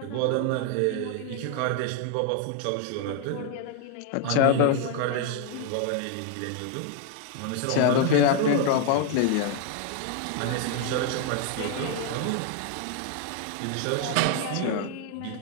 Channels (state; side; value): different; both; correlation 0.00